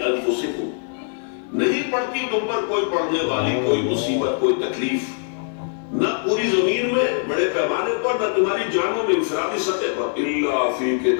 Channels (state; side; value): silent; right; 62 dB below the other